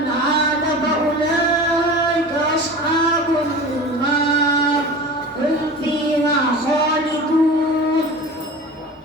عاد فأولئك أصحاب النار هم فيها خالدون.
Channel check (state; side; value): normal; both; correlation 0.35